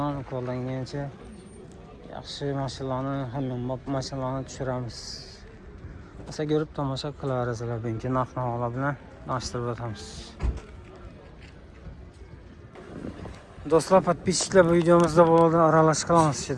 qo'ldan kelgancha yaxshi mashinalarni, hamma mashinalarni tushiramiz. Asa ko'rib tomosha qilaverasizlar. Bugungi narx-navolar bilan tanishtirib o'tamiz. Do'stlar, podpисчиклар, bu videomizda bo'ladi aralash qilamiz.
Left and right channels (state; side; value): identical; both; correlation 1.00